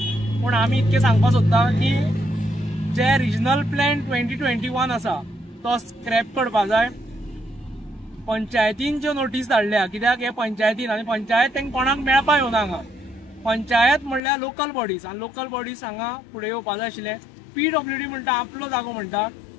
पूण आमी इतकें सांगपाक सोदता की जे रिजनल प्लॅन 2021 आसा तो स्क्रॅप करपाक जाय। पंचायतीन ज्यो नोटीस धाडल्या कित्याक हे पंचायतीन आनी पंचायत तांकां कोणाक मेळपाक येवना हांगा। पंचायत म्हणल्यार लोकल बॉडीज आनी लोकल बॉडीज हांगा फुडें येवपाक जाय आशिल्ले। PWD म्हणटा आपलो जागो म्हणटा,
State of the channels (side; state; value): right; drops out; at 14.2 s